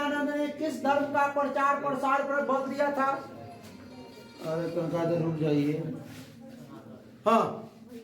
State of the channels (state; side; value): identical; both; correlation 1.00